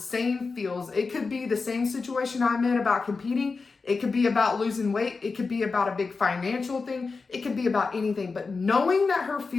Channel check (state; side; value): quieter; right; 4.4 dB